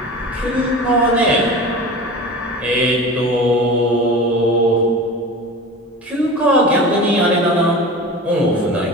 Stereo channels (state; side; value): normal; both; correlation 0.34